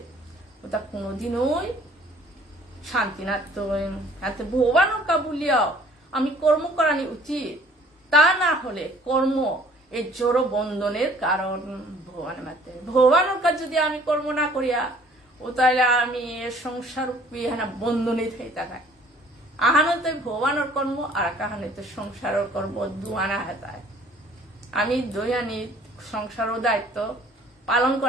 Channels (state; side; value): normal; both; correlation 0.55